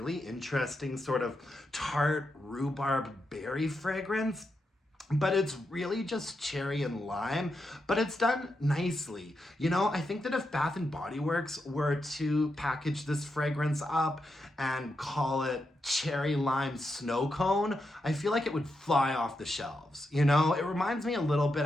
interesting sort of tart rhubarb berry fragrance. But it's really just cherry and lime, but it's done nicely. You know, I think that if Bath and Body Works were to package this fragrance up and call it cherry lime snow cone, I feel like it would fly off the shelves. You know, it reminds me a little bit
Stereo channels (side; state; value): both; normal; correlation 0.85